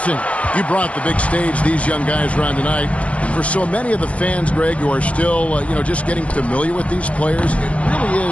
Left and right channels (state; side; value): late; right; 0.064 ms